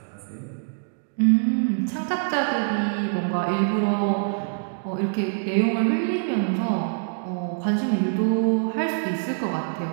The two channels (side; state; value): left; silent; digital silence